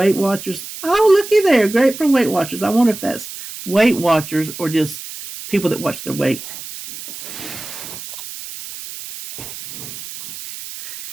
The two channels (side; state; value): right; noise; hiss, 11 dB below the sound